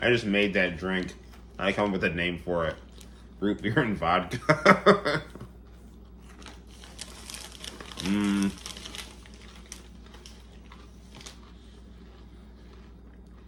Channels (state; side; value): identical; both; correlation 1.00